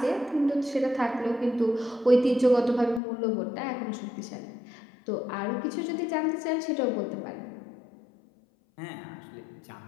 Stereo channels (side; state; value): right; drops out; at 3.0 s